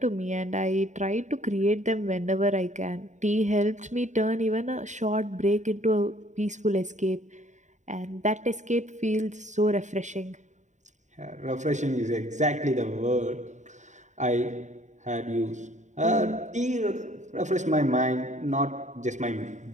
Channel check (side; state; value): left; late; 0.35 ms